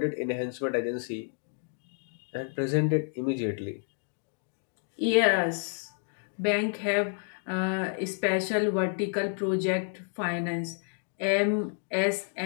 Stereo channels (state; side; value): silent; right; 58 dB below the other